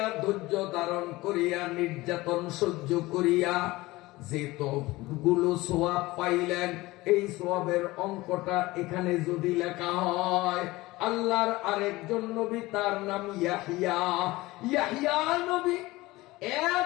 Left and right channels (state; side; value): quieter; right; 19.8 dB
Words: ধৈর্য ধারণ করিয়া নির্যাতন সহ্য করিয়া যে তো গুলো সোয়াব পাইলেন, এই সোয়াবের অঙ্কটা এখানে যদি লেখা হয়, আল্লাহর আরেকজন নবী, তার নাম ইয়াহিয়া। ইয়াহিয়া নবী